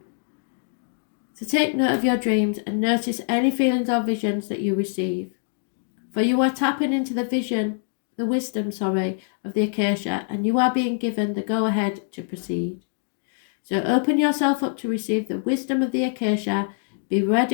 So take note of your dreams and notice any feelings or visions that you receive. For you are tapping into the wisdom of the acacia, and you are being given the go-ahead to proceed. So open yourself up to receive the wisdom of the acacia. Be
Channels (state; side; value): silent; right; digital silence